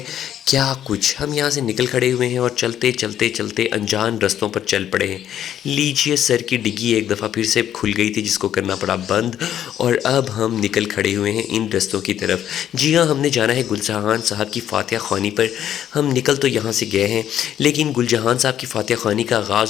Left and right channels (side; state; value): right; quieter; 10.6 dB